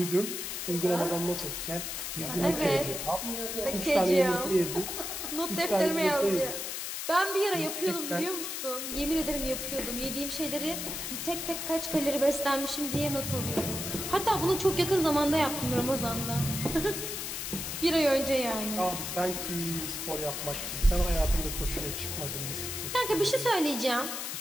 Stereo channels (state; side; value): noise; left; hiss, 4 dB below the sound